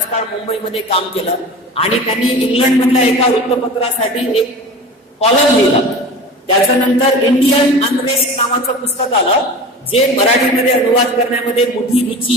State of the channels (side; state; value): both; normal; correlation 0.35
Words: काळ मुंबईमध्ये काम केलं आणि त्यांनी इंग्लंड मधल्या एका वृत्तपत्रासाठी एक कॉलम लिहिला. त्याच्यानंतर इंडियन अनरेस्ट नावाचं पुस्तक आलं, जे मराठीमध्ये अनुवाद करण्यामध्ये मोठी